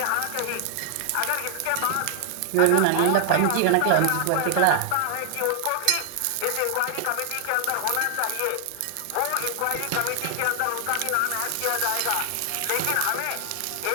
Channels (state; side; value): different; both; correlation 0.00